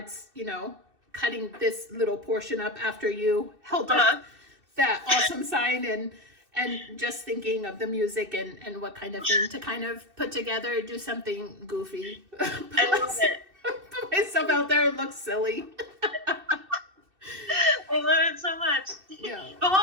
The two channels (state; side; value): late; left; 2.6 ms